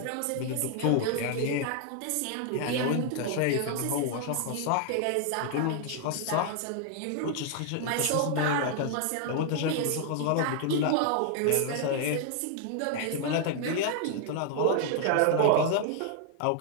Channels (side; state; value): both; different; correlation 0.00